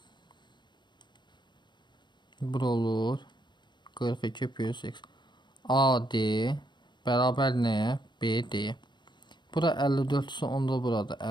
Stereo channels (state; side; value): late; right; 0.22 ms